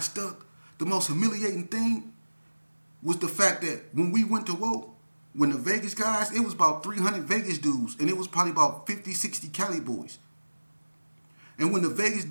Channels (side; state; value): both; inverted; correlation -1.00